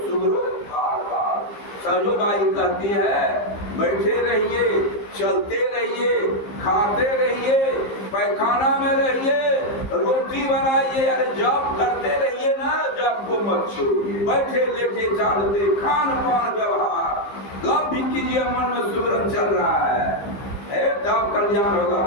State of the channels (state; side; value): late; right; 15 ms